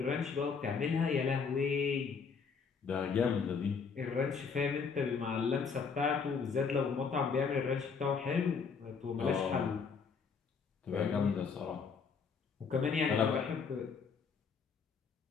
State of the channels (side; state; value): right; quieter; 5.6 dB